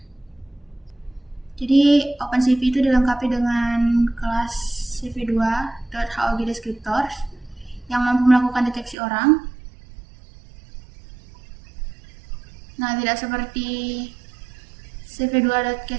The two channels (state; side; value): drops out; left; at 9.0 s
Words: Jadi OpenCV itu dilengkapi dengan kelas cv2.hog descriptors yang mampu melakukan deteksi orang. Nah, tidak seperti